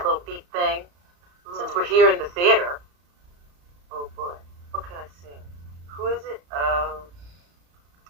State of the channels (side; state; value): left; late; 34 ms